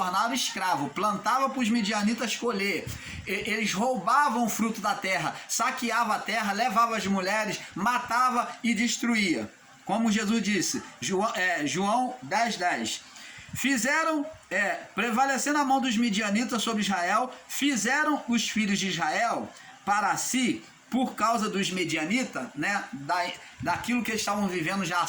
escravos, plantavam para os midianitas colher, eles roubavam o fruto da terra, saqueavam a terra, levavam as mulheres, matava e destruía. Como Jesus disse, João 10:10. Fizeram, prevalecendo a mão dos midianitas sobre Israel, fizeram os filhos de Israel para si, por causa dos medianitas, né, daquilo que eles estavam vivendo já há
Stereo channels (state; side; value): identical; both; correlation 1.00